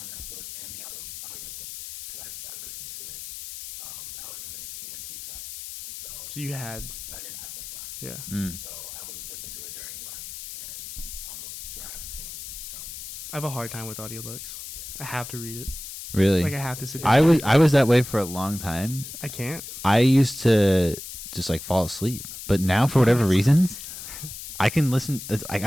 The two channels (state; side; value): noise; left; hiss, 11 dB below the sound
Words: that book and the audiobook, because I listened to it, I was in an EMT class. And So you had, so I didn't have much time. yeah. Mm. So I would listen to it during lunch and on the drive to and from. I have a hard time with audiobooks. I have to read it. Really, Like I have to sit down. I was that way for a long time. I can't. I used to just like fall asleep, but now for whatever reasons, I can listen. It's, like,